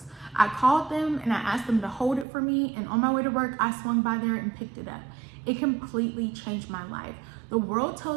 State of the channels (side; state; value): left; drops out; at 2.2 s